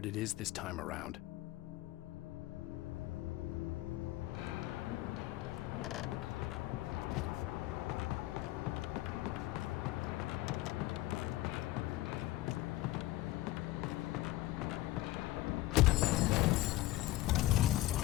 it is this time around.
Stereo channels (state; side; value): quieter; right; 17.0 dB